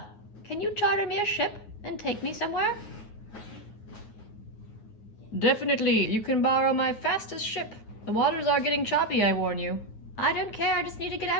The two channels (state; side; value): late; right; 9.5 ms